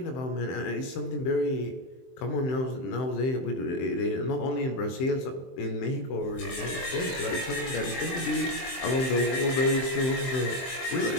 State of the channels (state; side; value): late; right; 23 ms